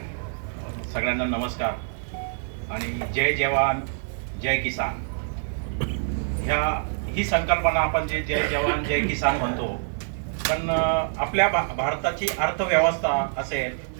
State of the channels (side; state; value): left; silent; digital silence